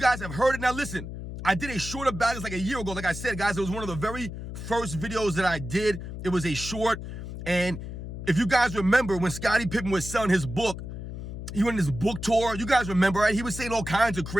have heard it. Now, listen, I did a short about this like a year ago. Like I said, guys, it was one of the very first videos that I did. It was a short. And if you guys remember, when Scottie Pippen was selling his book, he went on his book tour. You guys remember, right? He was saying all kinds of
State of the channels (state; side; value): noise; left; hum, 8 dB below the sound